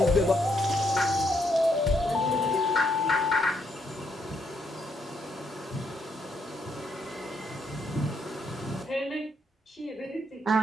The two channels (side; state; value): both; normal; correlation 0.75